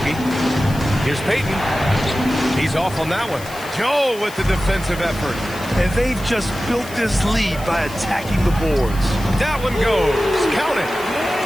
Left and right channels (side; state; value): left; noise; hiss, 17 dB below the sound